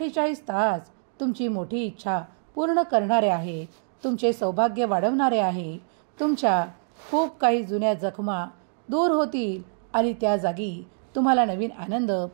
तास तुमची मोठी इच्छा पूर्ण करणारे आहे, तुमचे सौभाग्य वाढवणारे आहे. तुमच्या खूप काही जुन्या जखमा दूर होतील आणि त्या जागी तुम्हाला नवीन आनंद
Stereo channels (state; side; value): silent; left; digital silence